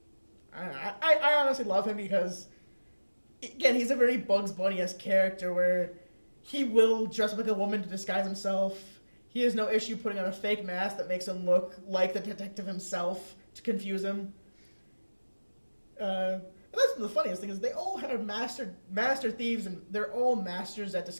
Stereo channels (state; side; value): inverted; both; correlation -1.00